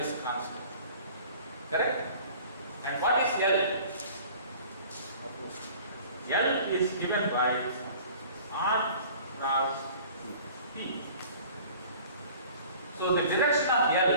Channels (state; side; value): inverted; both; correlation -0.47